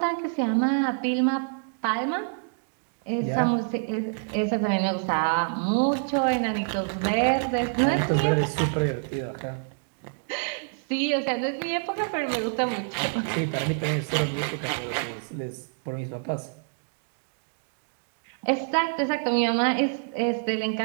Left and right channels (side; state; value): left; silent; digital silence